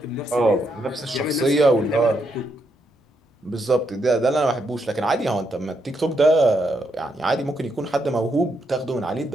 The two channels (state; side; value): normal; both; correlation 0.79